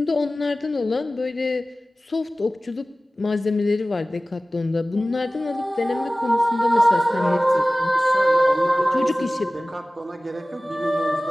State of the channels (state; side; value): normal; both; correlation 0.97